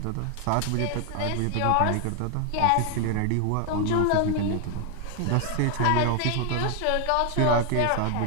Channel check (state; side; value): different; both; correlation 0.00